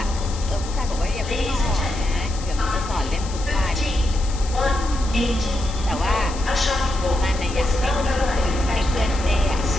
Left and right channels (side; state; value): left; noise; hiss, 14 dB below the sound